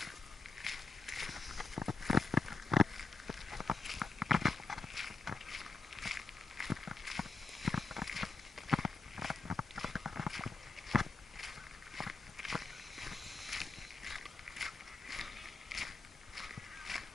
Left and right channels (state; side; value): quieter; right; 3.9 dB